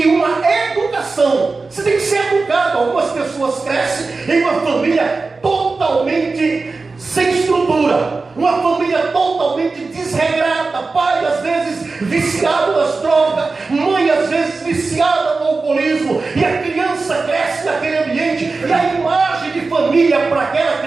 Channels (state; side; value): quieter; left; 4.0 dB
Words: uma educação. Você tem que ser educado. Algumas pessoas crescem em uma família totalmente sem estrutura, uma família totalmente desregrada, pai às vezes viciado nas drogas, mãe às vezes viciada no alcoolismo, e a criança cresce naquele ambiente, e a imagem de família para aquela